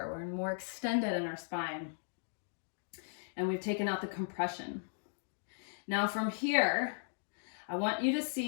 We're more extended in our spine. And we've taken out the compression. Now from here, I want you to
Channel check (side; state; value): right; silent; digital silence